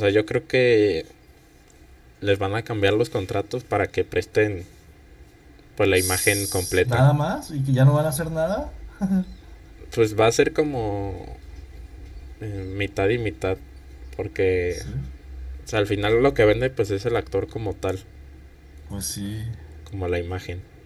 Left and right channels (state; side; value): identical; both; correlation 1.00